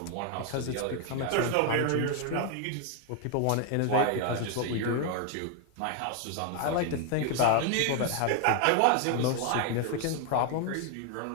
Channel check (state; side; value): different; both; correlation 0.01